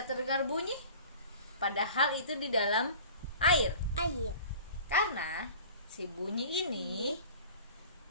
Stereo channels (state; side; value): inverted; both; correlation -0.42